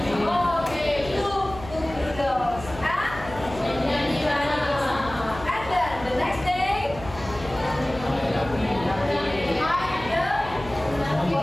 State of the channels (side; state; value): left; noise; hum, 14 dB below the sound